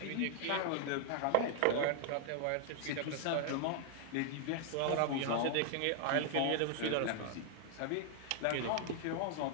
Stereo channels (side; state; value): both; different; correlation 0.00